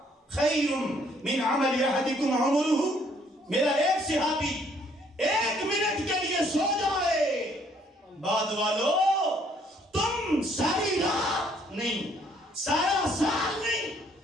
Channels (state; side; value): normal; both; correlation 0.65